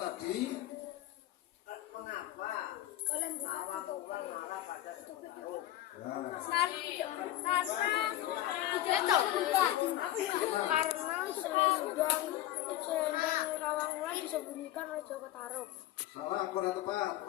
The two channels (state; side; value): quieter; right; 14.1 dB